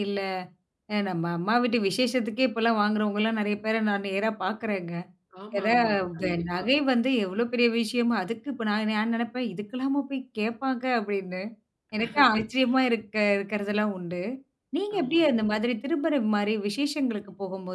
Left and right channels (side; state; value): both; identical; correlation 1.00